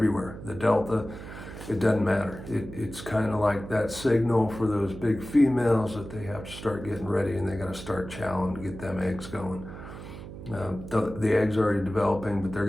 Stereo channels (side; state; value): right; noise; hum, 12 dB below the sound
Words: The Delta, it doesn't matter. It's kind of like that signal for those big females that they have to start getting ready and they got to start chowing to get them eggs going. The eggs are already developing, but they're